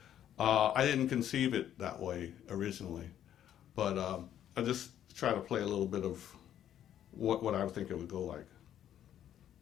I didn't conceive it that way originally. But I just try to play a little bit of what I would think it would go like.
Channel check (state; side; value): quieter; right; 10.7 dB